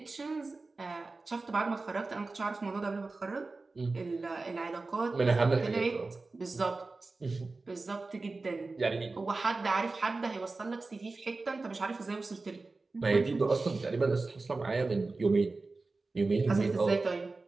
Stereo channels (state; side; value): quieter; left; 3.6 dB